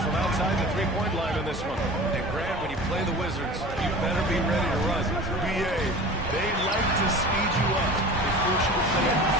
from outside the three-point line in this one. And Grant, when you play the Wizards, you better be ready to run. BA, they like to speed you up. They force you to play at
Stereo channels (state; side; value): normal; both; correlation 0.38